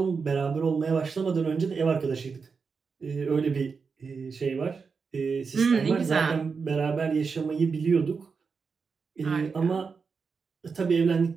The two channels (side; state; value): left; quieter; 5.3 dB